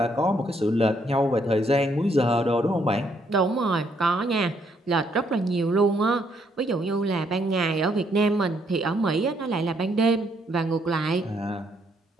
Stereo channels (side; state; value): both; normal; correlation 0.71